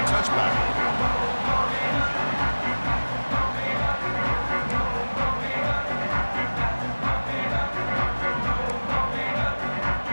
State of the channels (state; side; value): inverted; both; correlation -1.00